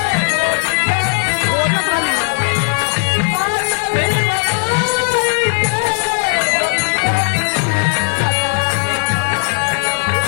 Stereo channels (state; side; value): silent; right; digital silence